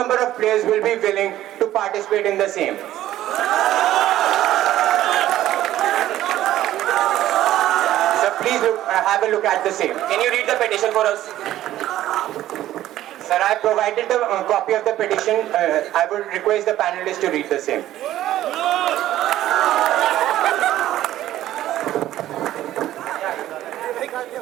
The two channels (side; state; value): left; quieter; 13.6 dB